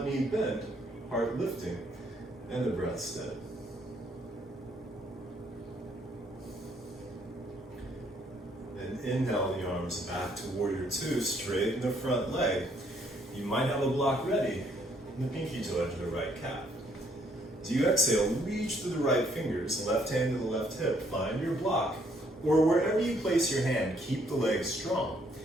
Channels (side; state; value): both; normal; correlation 0.67